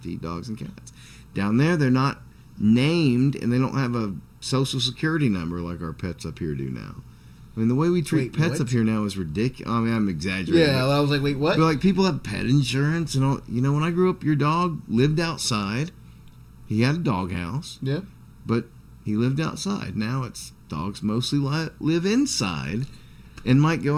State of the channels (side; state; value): both; identical; correlation 1.00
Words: to eat dogs and cats. Down there, they're not named, and they don't have a social security number like our pets up here do now. I mean, the way we treat pets what? up here now is ridiculous. I mean, I'm exaggerating. Yeah, I was like, wait, what? But like, people have pet insurance and all. When I grew up, your dog lived outside. He had a doghouse. Yeah. But he lived outside. Now it's dogs mostly live inside and might go